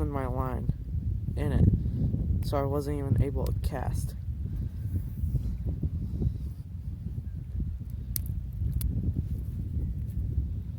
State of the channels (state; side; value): identical; both; correlation 1.00